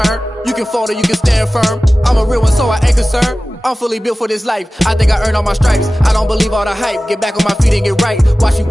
You can fold or you can stand firm. I'm a real one, so I ain't concerned. I'm fully built for this life. I think I earned all my stripes. I don't believe all the hype. Get back on my feet and get right. Watch you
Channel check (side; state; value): both; normal; correlation 0.96